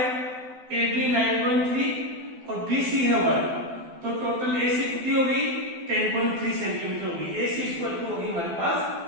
ए बी 9.3 और बी सी है 1, तो टोटल ए सी कितनी होगी 10.3 सेंटीमीटर होगी, ए सी इक्वल टू होगी हमारे पास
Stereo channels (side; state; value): left; late; 12 ms